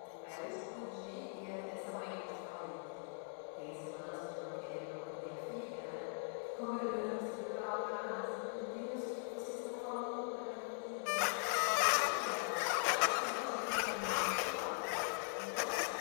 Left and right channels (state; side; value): silent; right; 50 dB below the other